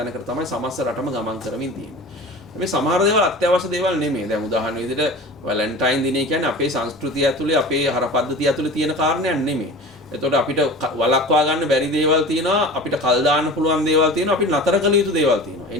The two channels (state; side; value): normal; both; correlation 0.36